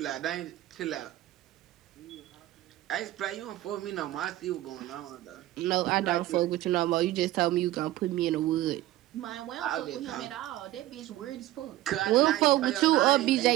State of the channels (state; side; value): quieter; left; 15.4 dB